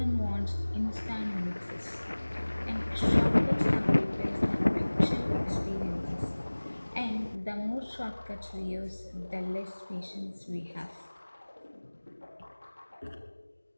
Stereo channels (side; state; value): both; inverted; correlation -1.00